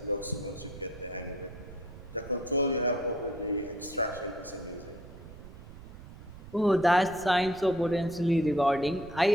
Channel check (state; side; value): noise; right; rumble, 16 dB below the sound